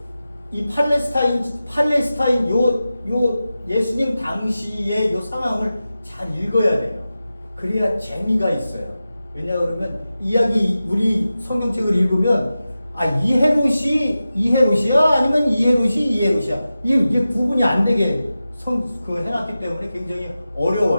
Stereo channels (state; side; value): inverted; both; correlation -0.94